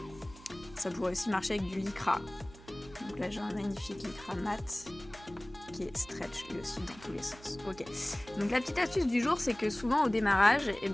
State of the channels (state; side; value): noise; right; hum, 20 dB below the sound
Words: Ça pourrait aussi marcher avec du lycra. Donc là j'ai un magnifique lycra mat qui est stretch lui aussi dans tous les sens. Ok. Donc la petite astuce du jour, c'est que souvent au démarrage,